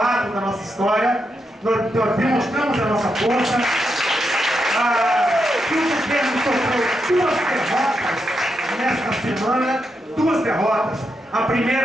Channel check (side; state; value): both; normal; correlation 0.84